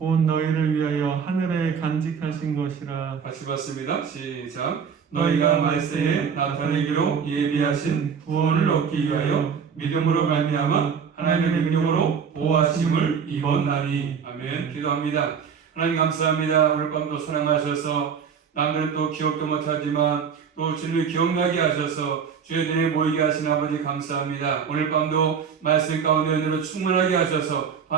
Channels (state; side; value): quieter; left; 6.8 dB